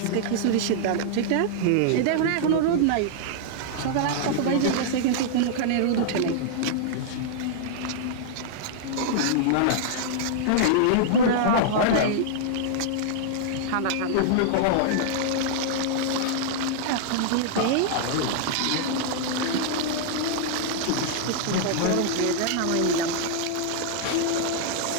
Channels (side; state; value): both; different; correlation -0.01